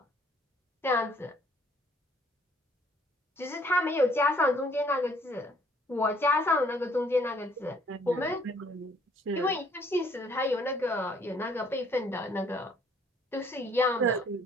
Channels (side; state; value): both; normal; correlation 0.61